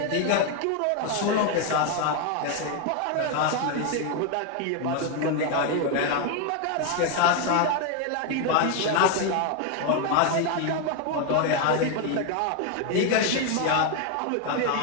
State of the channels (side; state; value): both; different; correlation 0.01